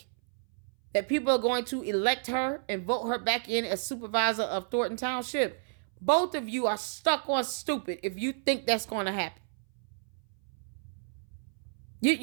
that people are going to elect her and vote her back in as supervisor of Thornton Township? Both of you are stuck on stupid if you think that's going to happen.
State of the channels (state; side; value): silent; left; 57 dB below the other